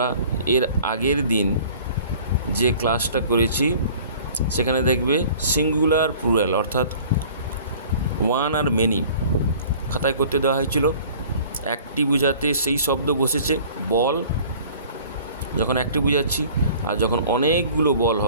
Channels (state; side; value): inverted; both; correlation -0.48